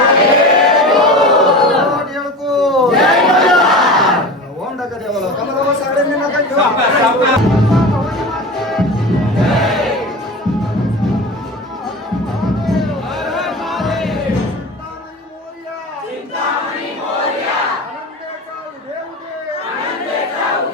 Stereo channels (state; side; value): normal; both; correlation 0.31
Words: ओम टाका देवाला कमला सगळ्यांनी नका घेऊ